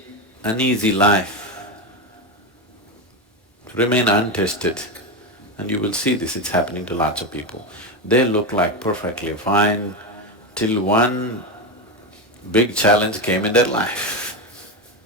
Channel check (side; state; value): both; normal; correlation 0.13